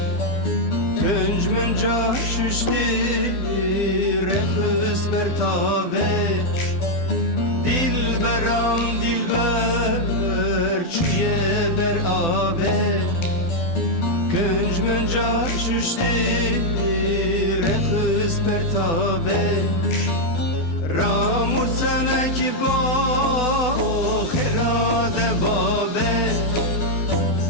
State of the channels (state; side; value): late; right; 12 ms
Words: گنج من جا ششتی رخص بر تاوه دلبرم دلبر چوی بر آوه گنج من جا ششتی رخص بر تاوه رامو سنک با خراد بابه